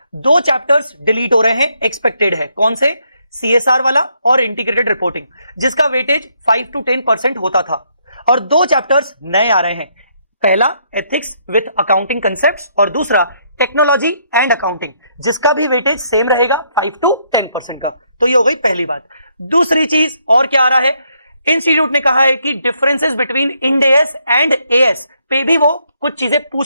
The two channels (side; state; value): both; inverted; correlation -0.73